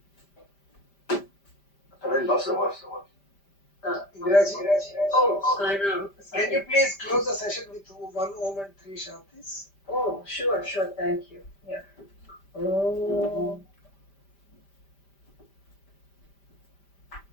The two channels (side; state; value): right; late; 5.1 ms